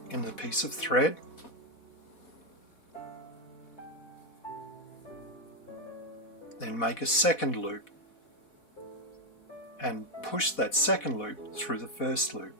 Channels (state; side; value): late; right; 4.1 ms